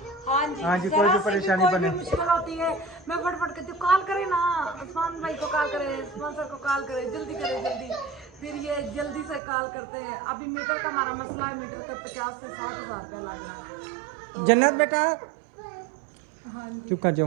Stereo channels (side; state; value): left; drops out; at 9.4 s